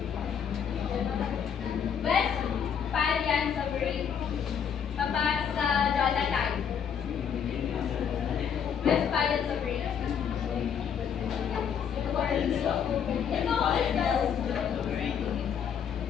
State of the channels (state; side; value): quieter; right; 7.8 dB